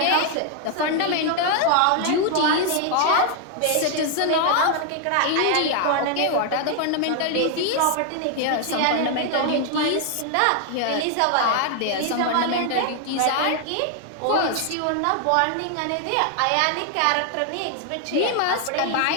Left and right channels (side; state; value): both; different; correlation 0.00